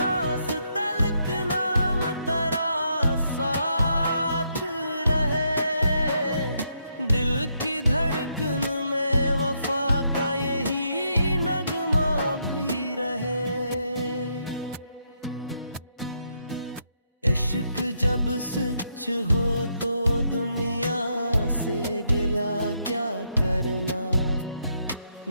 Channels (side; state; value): both; inverted; correlation -0.77